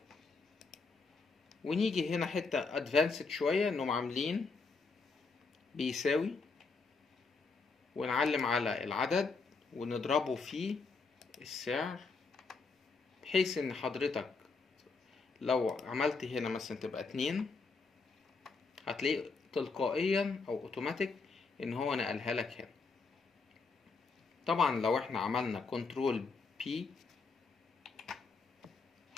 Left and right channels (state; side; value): quieter; right; 4.4 dB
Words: ونيجي هنا حتة ادفانسد شوية انهم عاملين بيساوي، ونعلم على العدد ونضربه في السعر، بحيث ان حضرتك لو عملت هنا مثلا تبقى 2 هتلاقي تلقائيا او اوتوماتيك ان هو نقلها لك هنا. طبعا لو احنا عملنا كنترول بي